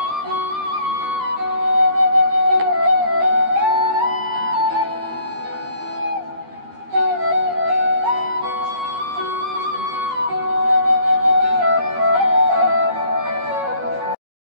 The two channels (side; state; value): left; late; 13 ms